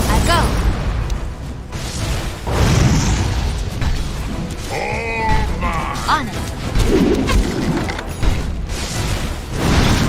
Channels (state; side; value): identical; both; correlation 1.00